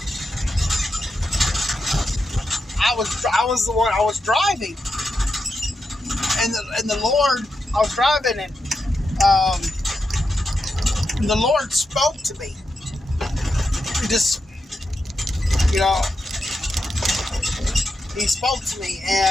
I was the one, I was driving. And the Lord, I was driving, and the Lord spoke to me. He just, He spoke to me,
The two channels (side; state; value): both; normal; correlation 0.87